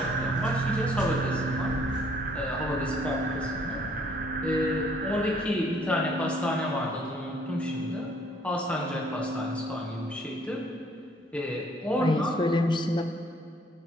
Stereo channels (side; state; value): both; normal; correlation 0.62